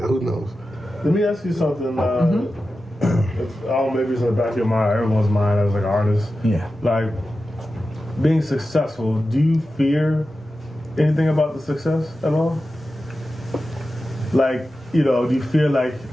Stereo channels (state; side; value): normal; both; correlation 0.93